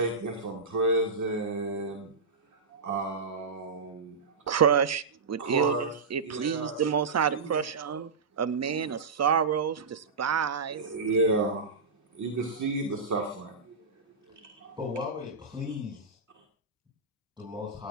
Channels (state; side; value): quieter; left; 4.6 dB